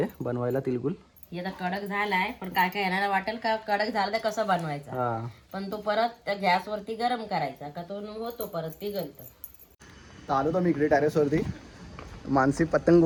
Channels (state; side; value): identical; both; correlation 1.00